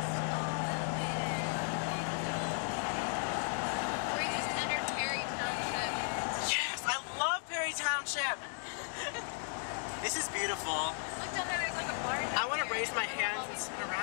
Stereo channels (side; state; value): right; silent; 54 dB below the other